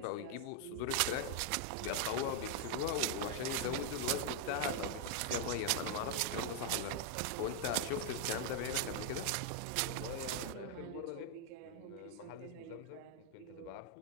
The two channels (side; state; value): both; different; correlation 0.00